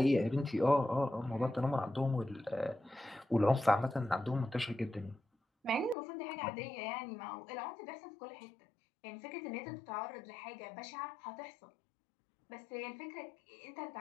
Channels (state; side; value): drops out; right; at 6.0 s